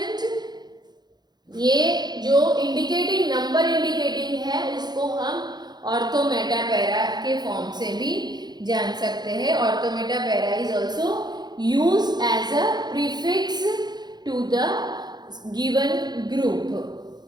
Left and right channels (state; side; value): late; left; 0.20 ms